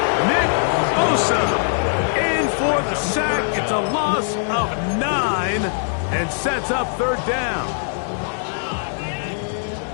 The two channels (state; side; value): silent; right; digital silence